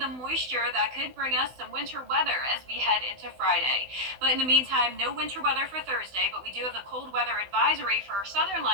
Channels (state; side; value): late; left; 16 ms